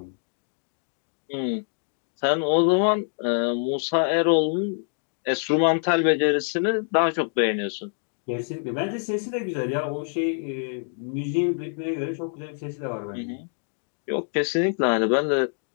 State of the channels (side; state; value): right; silent; 58 dB below the other